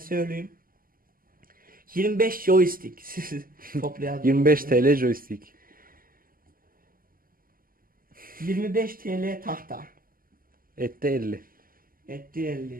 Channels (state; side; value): late; left; 0.42 ms